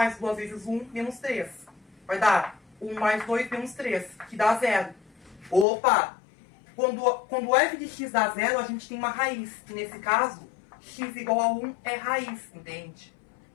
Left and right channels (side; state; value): right; drops out; at 5.7 s